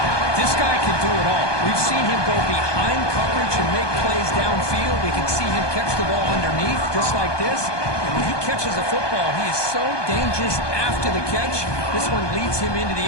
This guy can do it all. We've seen him go behind coverage and make plays downfield. We can see him catch the ball underneath, just like this. And when he catches a football, he is so dangerous after the catch. This one leads him into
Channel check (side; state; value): right; late; 1.2 ms